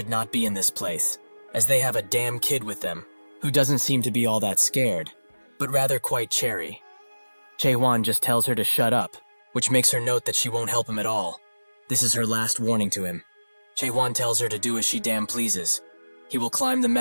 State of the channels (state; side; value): inverted; both; correlation -1.00